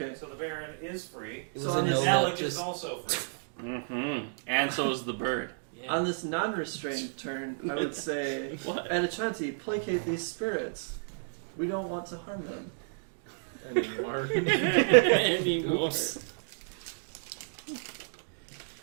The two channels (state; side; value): silent; left; digital silence